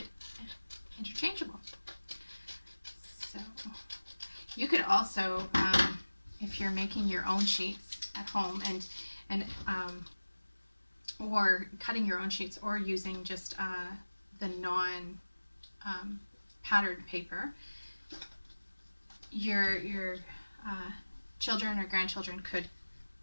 interchangeable. So you could also, if you're making your own sheets at home and or cutting your own sheets, or using just the non patterned paper, your children or grandchildren could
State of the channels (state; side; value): inverted; both; correlation -1.00